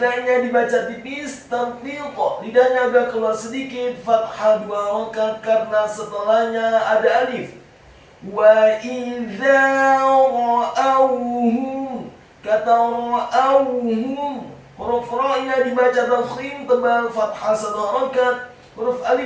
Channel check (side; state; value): both; identical; correlation 1.00